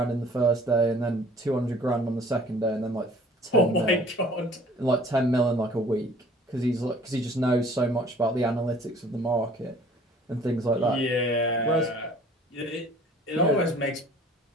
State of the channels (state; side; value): normal; both; correlation 0.52